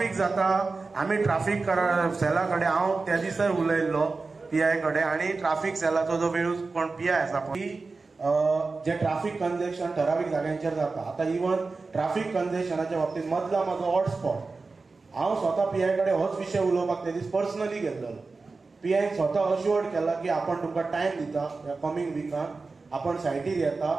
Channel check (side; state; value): left; quieter; 4.0 dB